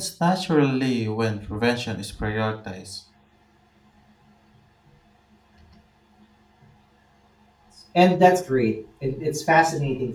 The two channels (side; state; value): both; identical; correlation 1.00